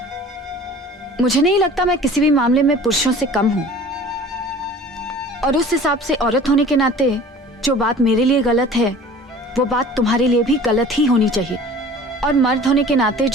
मुझे नहीं लगता मैं किसी भी मामले में पुरुषों से कम हूं, और उस हिसाब से औरत होने के नाते जो बात मेरे लिए गलत है वो बात तुम्हारे लिए भी गलत ही होनी चाहिए, और मर्द होने के नाते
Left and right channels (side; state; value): both; normal; correlation 0.45